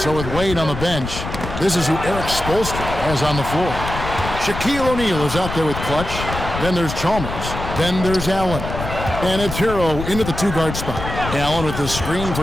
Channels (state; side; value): noise; left; rumble, 7 dB below the sound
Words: with Wade on the bench, this is who Eric Spoelstra has on the floor. Shaquille O'Neal is out there with Clutch. Then there's Chalmers. Then there's Allen. And it's Hero into the two-guard spot. Allen with the screen